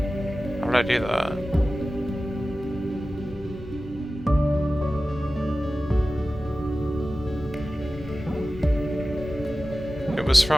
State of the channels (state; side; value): normal; both; correlation 0.95